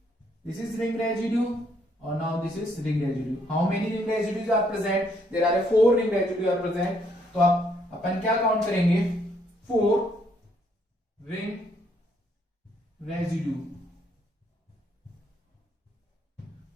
this is ring residue, और now this is ring residue. How many ring residues are present, there are 4 ring residue are present, तो आप अपन क्या काउंट करेंगे, 4 ring residue,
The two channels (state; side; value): normal; both; correlation 0.70